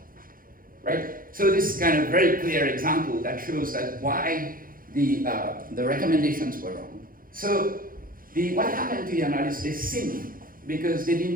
Right? So this is kind of very clear example that shows that why the recommendations were wrong. So what happened to the analysts, they sinned because they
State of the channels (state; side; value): late; left; 0.41 ms